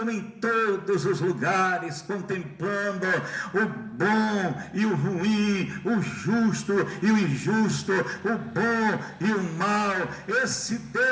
em todos os lugares, contemplando o bom e o ruim, o justo e o injusto, o bom e o mal. Esse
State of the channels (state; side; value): identical; both; correlation 1.00